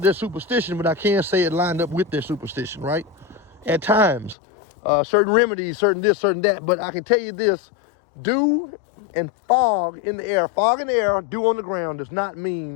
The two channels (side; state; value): right; drops out; at 4.4 s